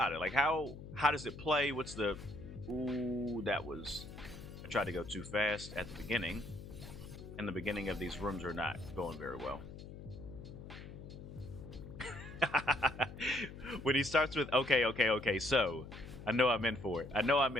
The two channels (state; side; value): noise; left; hum, 13 dB below the sound